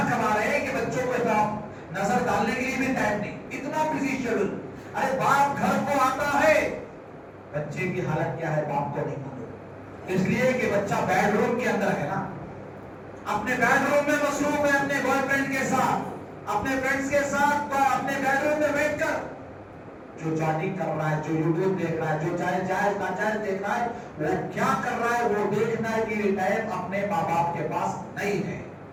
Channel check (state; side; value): identical; both; correlation 1.00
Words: کما رہے ہیں کہ بچوں کو نظر ڈالنے کے لیے بھی ٹائم نہیں. اتنا بزی شیڈول. ارے باپ گھر کو آتا ہے، بچے کی حالت کیا ہے باپ کو نہیں معلوم. اس لیے کہ بچہ بیڈ روم کے اندر ہے نا، اپنے بیڈ روم میں مصروف ہے، اپنے بوائے فرینڈ کے ساتھ، اپنے فرینڈز کے ساتھ اپنے بیڈ روم میں بیٹھ کر جو چیٹنگ کر رہا ہے، جو یوٹیوب دیکھ رہا ہے، جو جائز ناجائز دیکھ رہا ہے، وہ کیا کر رہا ہے وہ دیکھنا کی ٹائم اپنے ماں باپ کے پاس نہیں ہے.